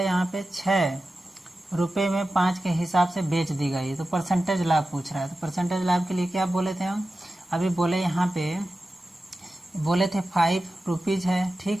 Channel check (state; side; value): normal; both; correlation 0.93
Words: यहाँ पे 6 रुपये में 5 के हिसाब से बेच दी गई। तो परसेंटेज लाभ पूछ रहा है। तो परसेंटेज लाभ के लिए क्या बोले थे हम, अभी बोले यहाँ पे बोले थे 5 रुपीज़ है,